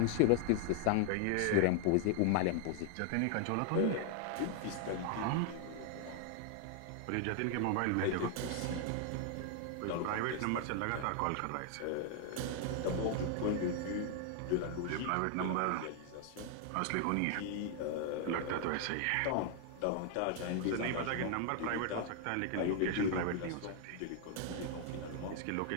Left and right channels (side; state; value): both; different; correlation 0.00